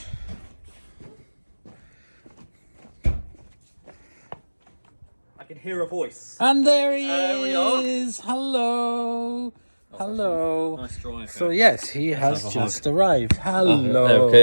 I can hear a voice. And there he we are. is. Hello. Hello. Nice drive. So yes, he has just arrived. Hello.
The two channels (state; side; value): inverted; both; correlation -1.00